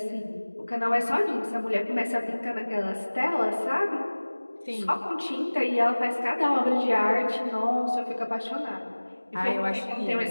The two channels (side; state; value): both; inverted; correlation -1.00